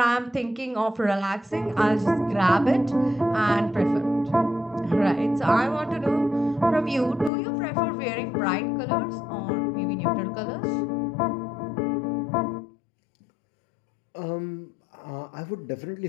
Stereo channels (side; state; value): right; drops out; at 7.3 s